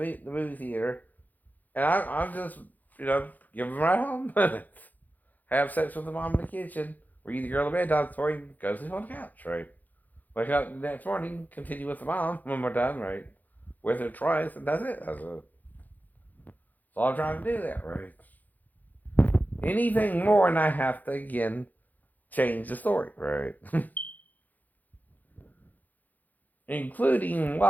movie theater. And I'm just, give them right home. Have sex with the mom in the kitchen. Read the girl a bedtime story, go sleep on the couch, right? Wake up the next morning, continue with the mom when we're done, right? With her twice, and that's it. That's all I'm trying to do there, right? anything more, and I have to again change the story, right? Including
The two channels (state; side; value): late; right; 0.082 ms